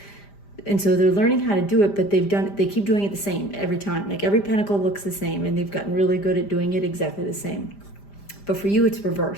And so they're learning how to do it, but they keep doing it the same every time. Like every pentacle looks the same, and they've gotten really good at doing it exactly the same. But for you, it's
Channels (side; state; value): right; late; 5.0 ms